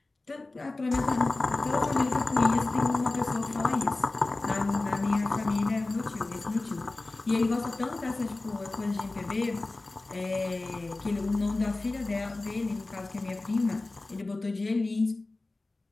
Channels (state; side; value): quieter; right; 3.1 dB